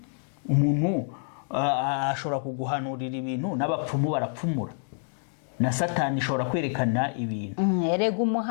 Umuntu ashobora kuguhanurira ibintu n'abapfumu barapfumura, na Satani ishobora kwerekana ibintu. Erega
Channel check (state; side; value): silent; right; digital silence